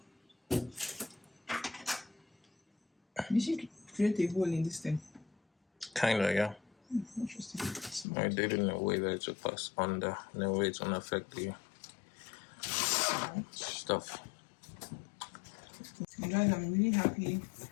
You should create a hole in this thing. Kinda, yeah. Interesting. I did it in a way that it should pass under, in a way it won't affect the stuff. guys, I'm really happy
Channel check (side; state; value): right; drops out; at 8.1 s